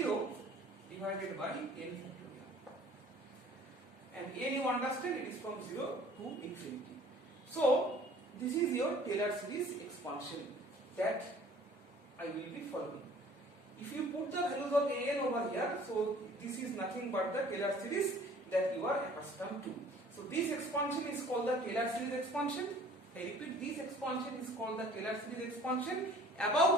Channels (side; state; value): both; normal; correlation 0.51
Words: divided by n factorial, and n you understand it is from 0 to infinity. So this is your Taylor series expansion that I will be following. If you put the values of an over here, so this is nothing but the Taylor series that you are accustomed to. So this expansion is called the Taylor series expansion. I repeat, this expansion is called the Taylor series expansion